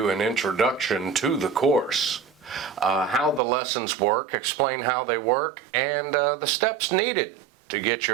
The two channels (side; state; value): left; drops out; at 3.4 s